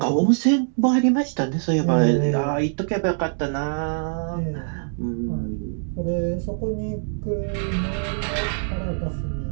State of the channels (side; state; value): left; silent; digital silence